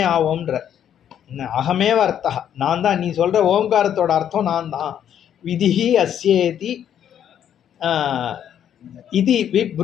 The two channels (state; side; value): quieter; right; 9.7 dB